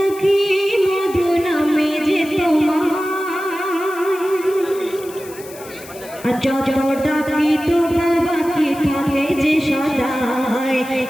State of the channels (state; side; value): noise; left; hiss, 18 dB below the sound